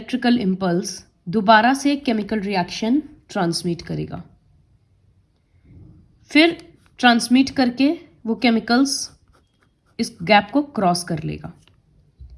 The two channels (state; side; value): identical; both; correlation 1.00